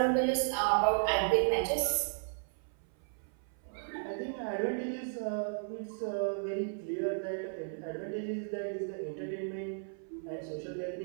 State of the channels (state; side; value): silent; left; 55 dB below the other